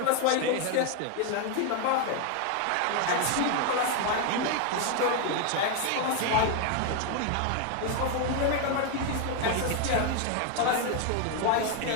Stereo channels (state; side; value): different; both; correlation 0.01